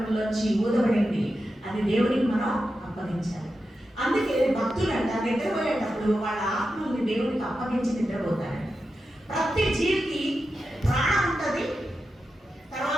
ఊదబడింది. అది దేవునికి మనం అప్పగించాలి. అందుకే భక్తులంట నిద్రపోయేటప్పుడు వాళ్ళ ఆత్మల్ని దేవునికి అప్పగించి నిద్రపోతారు. ప్రతి జీవికి ప్రాణం ఉంటుంది,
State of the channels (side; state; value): both; normal; correlation 0.90